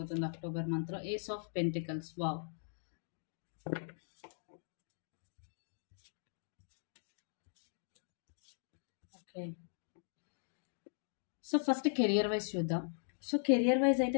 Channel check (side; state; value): right; silent; digital silence